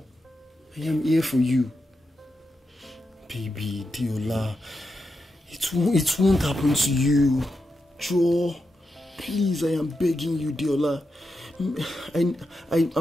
I am here for you. Baby, Deola. It won't happen to you. Joe, please, I am begging you, Deola.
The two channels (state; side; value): normal; both; correlation 0.87